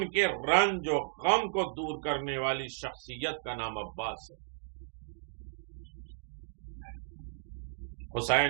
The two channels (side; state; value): left; silent; digital silence